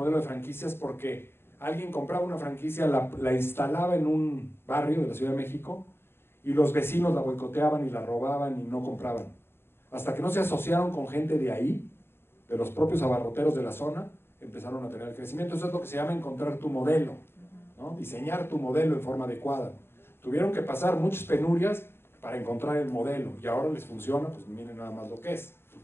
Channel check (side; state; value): right; late; 0.11 ms